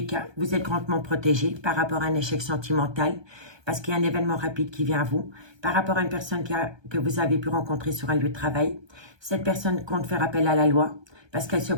cas, vous êtes grandement protégé par rapport à un échec sentimental, parce qu'il y a un événement rapide qui vient à vous, par rapport à une personne que vous avez pu rencontrer sur un lieu de travail. Cette personne compte faire appel à la loi, parce qu'elle se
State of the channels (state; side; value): late; left; 1.2 ms